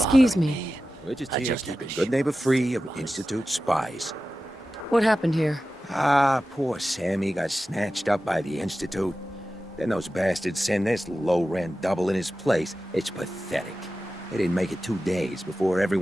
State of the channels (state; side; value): normal; both; correlation 0.94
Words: Excuse me. We're just I here just keeping had to good neighbor free of honest. Institute spies. What happened here? Ah, poor Sammy got snatched up by the Institute. Then those bastards send this low-rent double in his place. It's pathetic. They didn't make it 2 days before